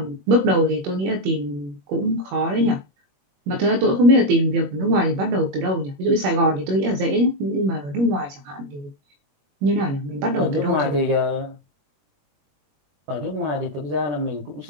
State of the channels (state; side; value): late; left; 21 ms